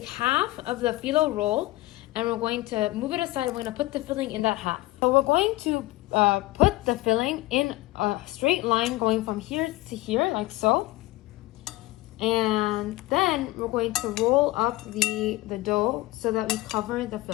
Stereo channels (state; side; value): quieter; right; 18.9 dB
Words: half of the phyllo roll and we're going to move it aside. We're going to put the filling in that half. So we're going to put the filling in a straight line going from here to here, like so. And then we're going to roll up the dough so that we cover the